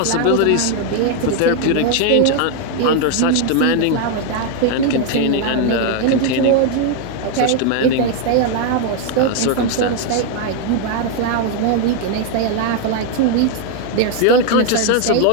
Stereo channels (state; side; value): different; both; correlation 0.00